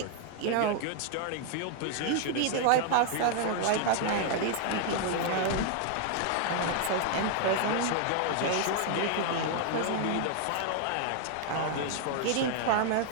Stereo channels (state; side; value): different; both; correlation 0.00